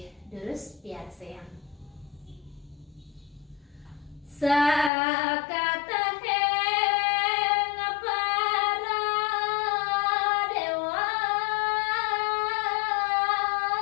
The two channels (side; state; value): right; drops out; at 4.9 s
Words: terus biar sayang. Sakataheng para dewa